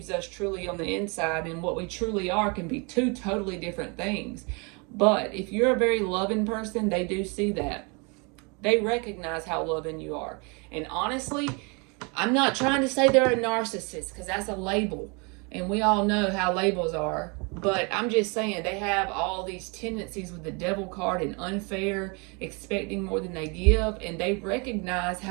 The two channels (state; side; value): quieter; left; 31.8 dB